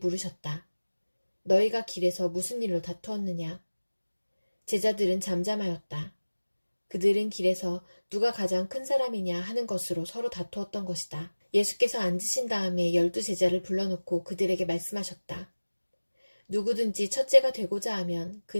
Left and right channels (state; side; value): inverted; both; correlation -1.00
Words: 너희가 길에서 무슨 일로 다투었느냐? 제자들은 잠잠하였다. 그들은 길에서 누가 가장 큰 사람이냐 하는 것으로 서로 다투었던 것이다. 예수께서 앉으신 다음에 12제자를 불러놓고 그들에게 말씀하셨다. 누구든지 첫째가 되고자 하면